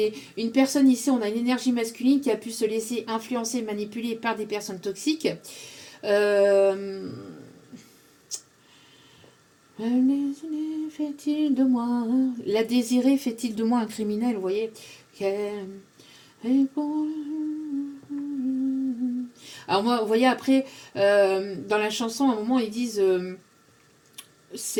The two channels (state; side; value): identical; both; correlation 1.00